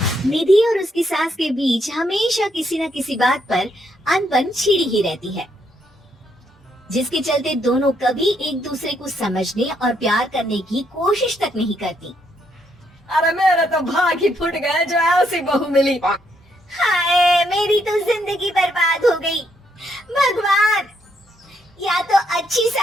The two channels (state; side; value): normal; both; correlation 0.74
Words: निधि और उसकी सास के बीच हमेशा किसी न किसी बात पर अनबन छिड़ी ही रहती है, जिसके चलते दोनों कभी एक दूसरे को समझने और प्यार करने की कोशिश तक नहीं करती। अरे मेरे तो भाग ही फुट गए जो ऐसी बहू मिली। हाय, मेरी तो जिंदगी बर्बाद हो गई। भगवान, या तो अच्छी